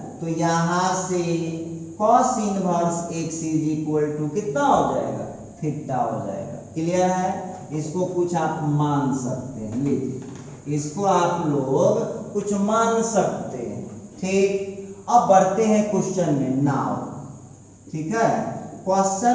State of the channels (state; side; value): identical; both; correlation 1.00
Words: तो यहाँ से cos inverse x is equal to कितना हो जाएगा, थीटा हो जाएगा। क्लियर है, इसको कुछ आप मान सकते हैं, लीजिए इसको आप लोग कुछ मान सकते हैं, ठीक। अब बढ़ते हैं क्वेश्चन में नाउ, ठीक है।